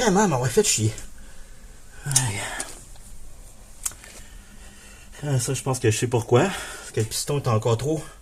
m'aurait fait chier. Ça, je pense que je sais pourquoi. Parce que le piston est encore trop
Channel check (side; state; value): both; identical; correlation 1.00